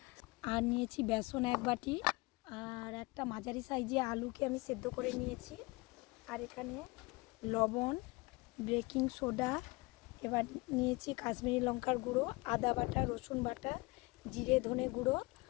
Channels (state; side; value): quieter; right; 24.5 dB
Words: আর নিয়েছি বেসন 1 বাটি, আর একটা মাঝারি সাইজে আলুকে আমি সেদ্ধ করে নিয়েছি। আর এখানে লবণ, বেকিং সোডা, এবার নিয়েছি কাশ্মীরি লঙ্কার গুঁড়ো, আদা বাটা, রসুন বাটা, জিরে ধনে গুঁড়ো,